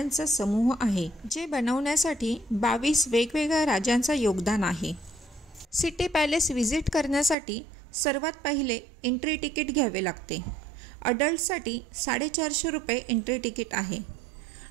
समूह आहे, जे बनवण्यासाठी 22 वेगवेगळ्या राजांचं योगदान आहे. सिटी पॅलेस व्हिजिट करण्यासाठी सर्वात पहिले एंट्री तिकीट घ्यावे लागते. अडल्टसाठी 450 रुपये एंट्री तिकीट आहे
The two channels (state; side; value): drops out; left; at 7.4 s